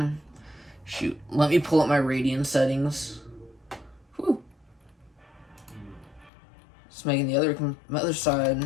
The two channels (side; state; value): right; drops out; at 6.3 s